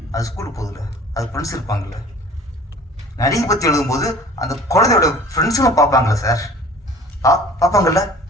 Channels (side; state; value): both; normal; correlation 0.46